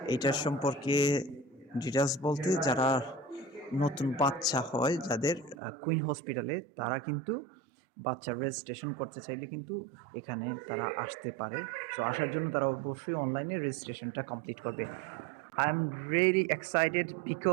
এইটার সম্পর্কে ডিটেলস বলতে, যারা নতুন বাচ্চা হয় যাদের কুইন হসপিটালে, তারা কিন্তু বাচ্চার রেজিস্ট্রেশন করতে চাইলে কিন্তু এখানে তারা আসতে পারে। সো আসার জন্য তারা অবশ্যই অনলাইনে রেজিস্ট্রেশনটা কমপ্লিট করবে। I'm really excited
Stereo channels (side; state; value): left; drops out; at 5.6 s